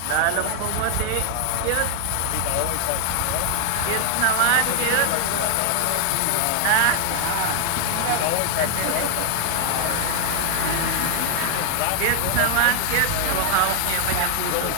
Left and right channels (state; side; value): different; both; correlation 0.00